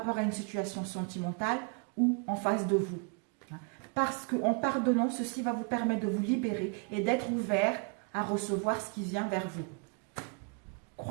à une situation sentimentale ou en face de vous. Parce qu'en pardonnant, ceci va vous permettre de vous libérer et d'être ouvert à recevoir ce qui vient vers vous.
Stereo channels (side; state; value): left; quieter; 36.4 dB